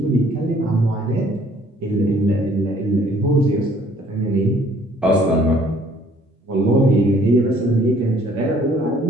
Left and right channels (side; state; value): both; normal; correlation 0.59